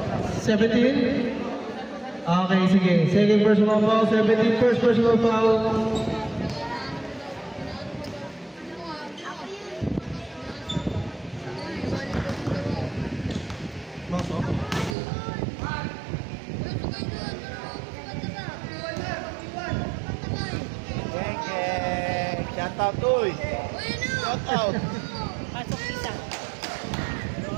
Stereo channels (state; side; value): drops out; left; at 15.0 s